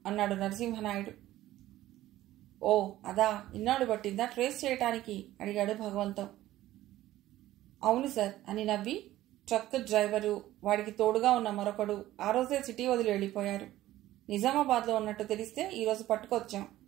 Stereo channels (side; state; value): left; quieter; 14.9 dB